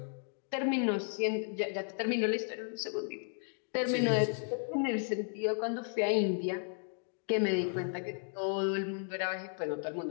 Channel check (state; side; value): silent; right; 55 dB below the other